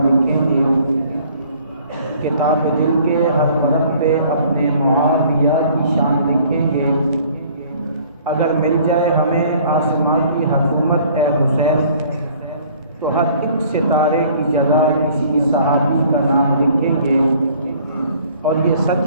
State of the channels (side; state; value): both; inverted; correlation -0.55